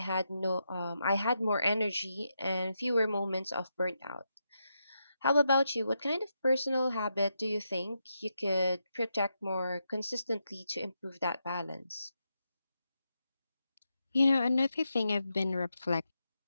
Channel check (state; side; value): inverted; both; correlation -0.84